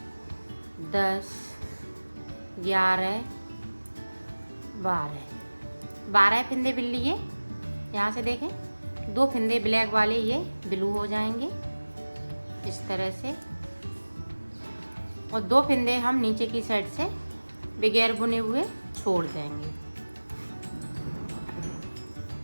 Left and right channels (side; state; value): both; inverted; correlation -1.00